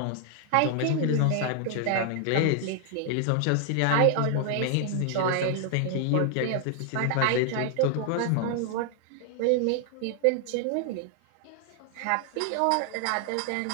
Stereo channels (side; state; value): both; different; correlation 0.00